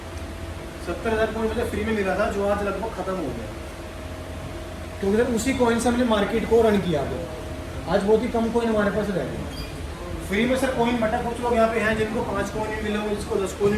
70,000 कॉइन मुझे फ्री में मिला था, जो आज लगभग खत्म हो गया, क्योंकि सर उसी कॉइन से हमने मार्केट को रन किया। आज बहुत ही कम कॉइन हमारे पास रह गए फ्री में। सर कॉइन बटा, कुछ लोग यहाँ पे हैं जिनको 5 कॉइन भी मिले होंगे, जिसको 10 कॉइन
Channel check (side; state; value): both; identical; correlation 1.00